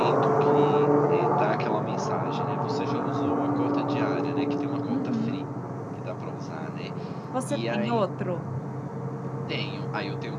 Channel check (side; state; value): both; identical; correlation 1.00